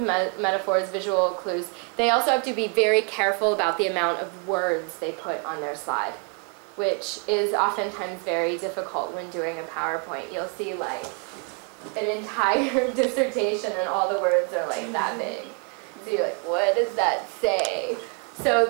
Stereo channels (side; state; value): left; quieter; 32.2 dB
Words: metaphors, visual clues. They also have to be very careful about the amount of words they put on their slide, which is oftentimes very difficult when doing a PowerPoint. You'll see like an entire dissertation and all the words are like that big. So you're like, what does that say? So